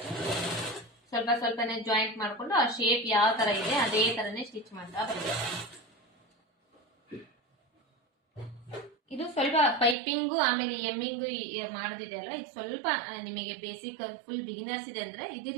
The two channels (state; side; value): drops out; left; at 10.0 s